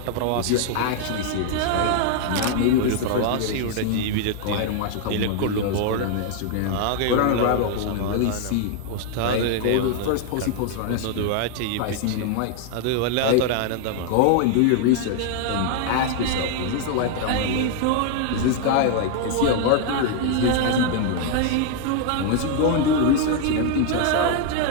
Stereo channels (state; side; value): different; both; correlation 0.00